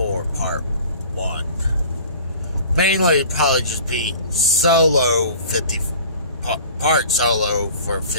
part 1. Mainly, probably just be solo 50, part solo for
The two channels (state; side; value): inverted; both; correlation -0.44